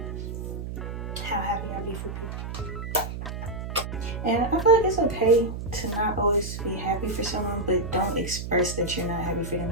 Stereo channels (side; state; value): right; noise; hum, 6 dB below the sound